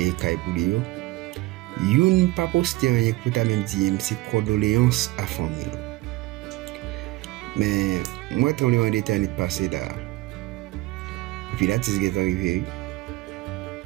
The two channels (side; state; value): left; quieter; 19.3 dB